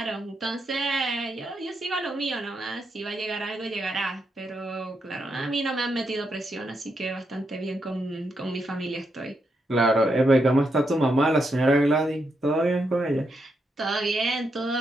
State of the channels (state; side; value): normal; both; correlation 0.82